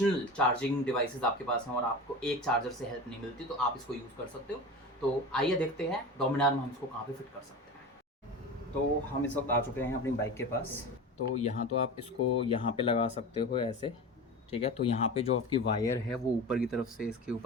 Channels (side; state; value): both; normal; correlation 0.29